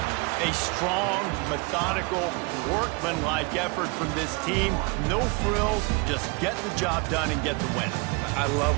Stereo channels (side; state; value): left; quieter; 30.1 dB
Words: A strong, methodical, workmanlike effort from this team. No frills, just get the job done and get the win. I